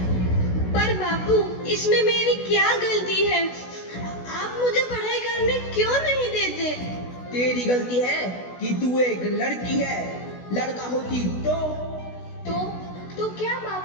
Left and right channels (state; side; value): late; right; 16 ms